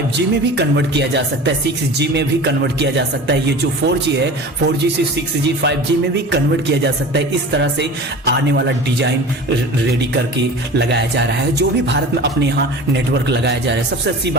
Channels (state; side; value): normal; both; correlation 0.37